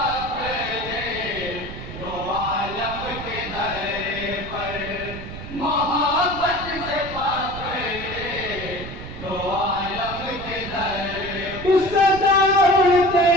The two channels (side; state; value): right; noise; rumble, 11 dB below the sound